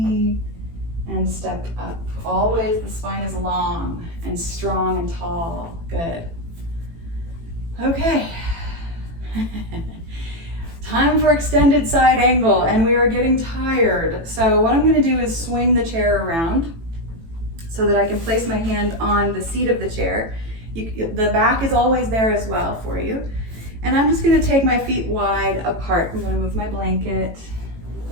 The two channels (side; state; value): left; late; 18 ms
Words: and step up. Always the spine is long and strong and tall. Good. Okay. Time for extended side angle, and we are getting tired. So what I'm going to do is swing the chair around so that I can place my hand on the seat of the chair. The back is always there as well for you. And I'm just going to take my feet wide apart. I'm going to move my blanket